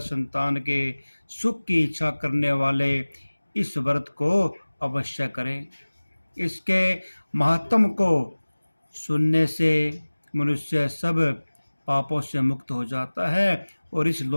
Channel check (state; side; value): inverted; both; correlation -1.00